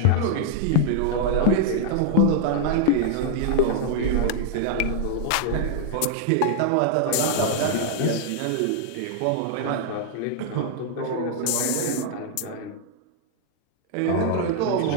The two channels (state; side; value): different; both; correlation -0.01